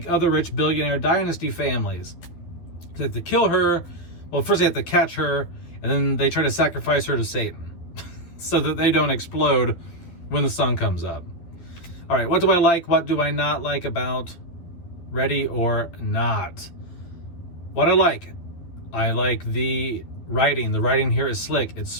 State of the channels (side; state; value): right; late; 11 ms